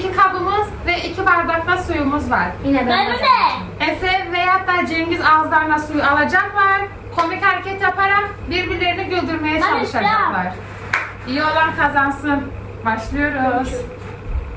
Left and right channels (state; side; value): identical; both; correlation 1.00